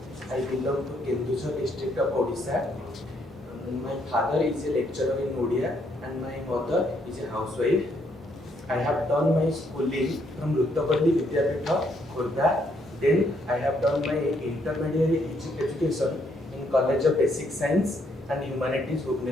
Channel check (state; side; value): normal; both; correlation 0.72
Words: I belong to Kendusha district of Odisha. My father is a lecturer in Odia and my mother is a housewife. I have done my schooling from Ruttapalli Vidyapitha, Khurda. Then I have done my intermediate education in College of Basic Science and Humanities,